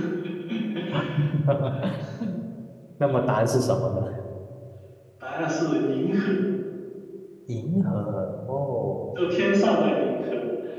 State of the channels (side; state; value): both; identical; correlation 1.00